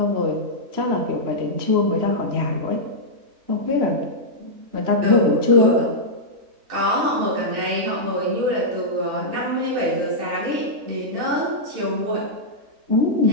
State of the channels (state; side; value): late; left; 3.1 ms